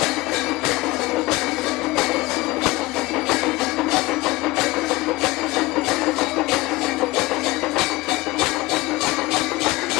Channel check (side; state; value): right; quieter; 20.6 dB